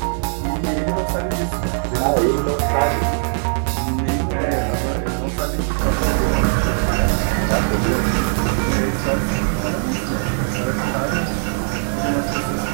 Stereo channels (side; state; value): left; silent; 63 dB below the other